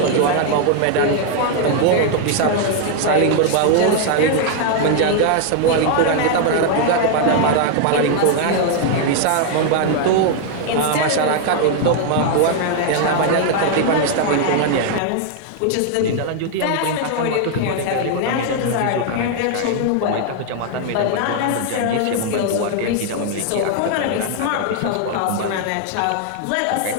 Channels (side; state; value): both; different; correlation 0.00